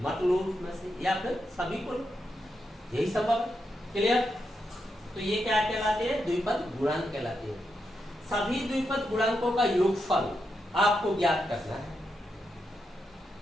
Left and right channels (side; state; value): both; normal; correlation 0.85